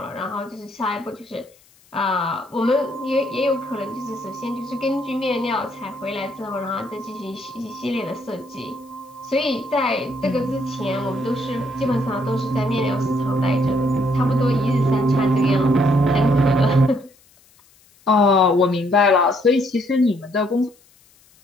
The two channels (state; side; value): noise; left; hiss, 30 dB below the sound